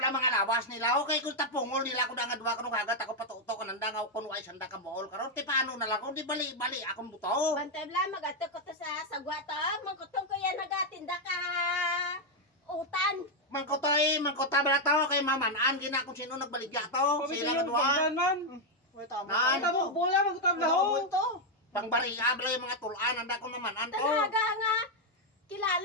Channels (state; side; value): normal; both; correlation 0.01